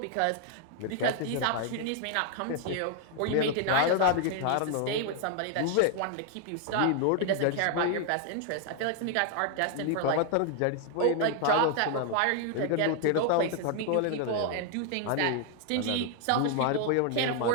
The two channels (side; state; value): both; different; correlation 0.00